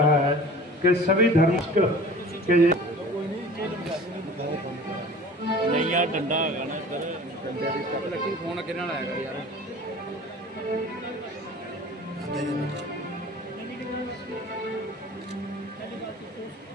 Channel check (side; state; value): both; normal; correlation 0.43